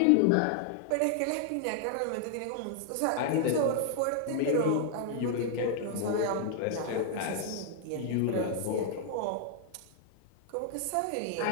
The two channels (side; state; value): both; different; correlation 0.00